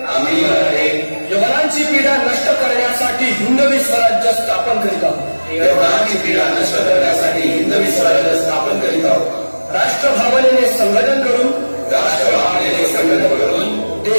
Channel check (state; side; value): inverted; both; correlation -1.00